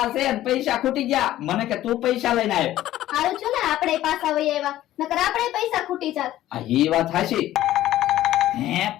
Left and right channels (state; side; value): quieter; right; 14.0 dB